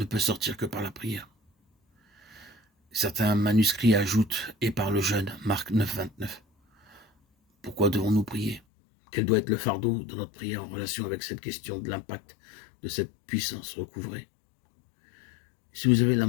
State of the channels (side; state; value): right; drops out; at 8.6 s